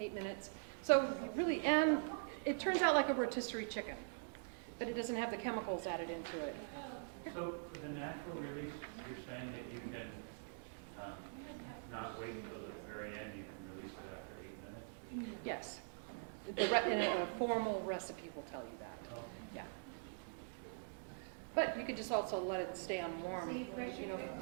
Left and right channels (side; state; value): left; silent; digital silence